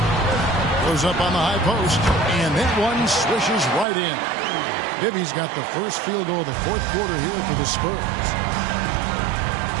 Goes up on the high post, and that one swishes right in. Bibby's got the first field goal of the fourth quarter here for the Spurs.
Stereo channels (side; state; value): left; drops out; at 3.9 s